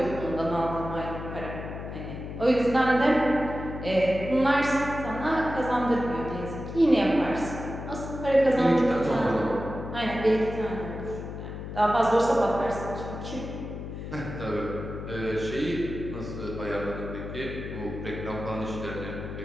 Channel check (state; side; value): noise; left; hum, 8 dB below the sound